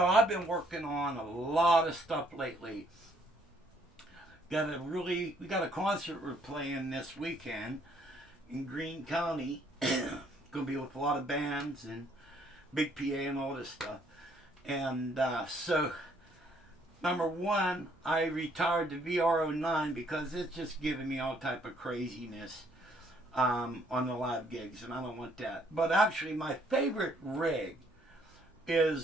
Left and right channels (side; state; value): both; normal; correlation 0.66